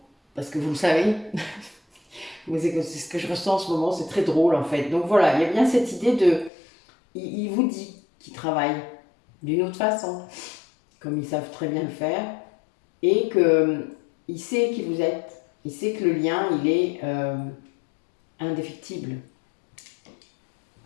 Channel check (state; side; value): drops out; right; at 6.5 s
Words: parce que vous le savez. C'est ce que je ressens en ce moment, c'est très drôle en fait. Donc voilà, il y a bien cette idée de... Il vous dit qu'il travaille d'une autre façon, comme ils savent très bien le faire, et qu'il sait qui vous êtes. Il sait que le lien, il est indéfectible.